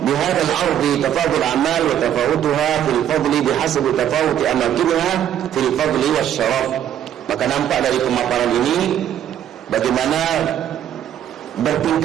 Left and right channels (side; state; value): left; quieter; 10.5 dB